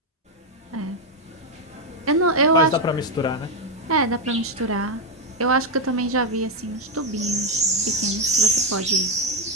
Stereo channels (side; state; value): both; normal; correlation 0.04